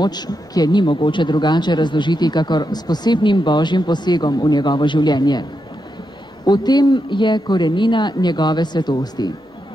ki je ni mogoče drugače razložiti, kakor s posebnim božjim posegom v njegovo življenje. V tem je korenina njegove svetosti.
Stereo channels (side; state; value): both; normal; correlation 0.85